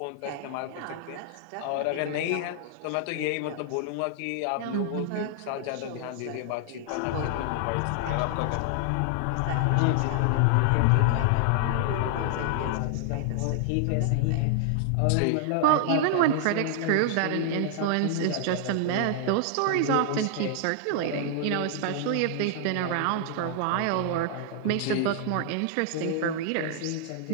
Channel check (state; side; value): different; both; correlation 0.00